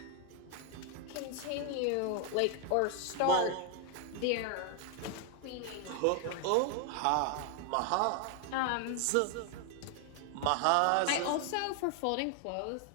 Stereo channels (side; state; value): both; different; correlation 0.00